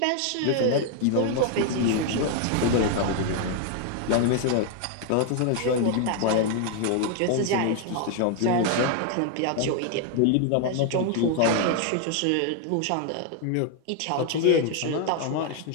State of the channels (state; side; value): different; both; correlation 0.00